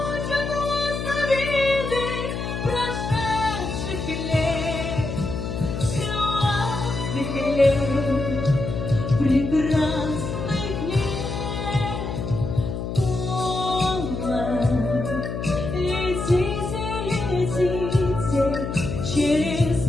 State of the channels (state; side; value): noise; left; hum, 4 dB below the sound